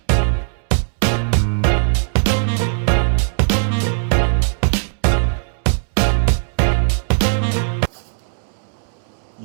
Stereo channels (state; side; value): silent; left; 67 dB below the other